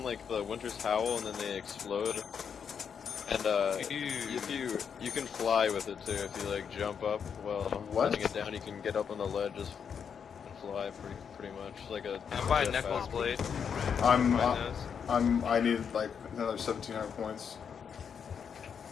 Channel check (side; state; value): right; quieter; 7.1 dB